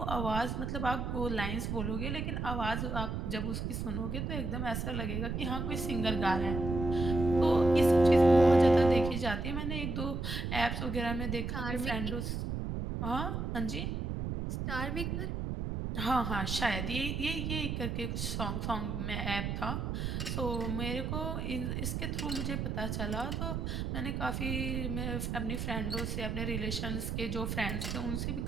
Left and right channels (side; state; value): right; noise; rumble, 2 dB below the sound